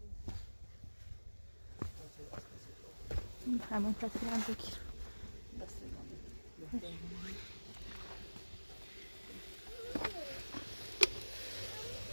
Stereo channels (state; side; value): inverted; both; correlation -1.00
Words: همون تصویرم بگیر.